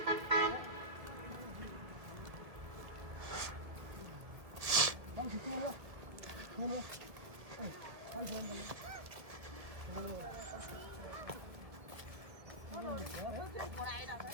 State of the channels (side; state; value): left; late; 1.7 ms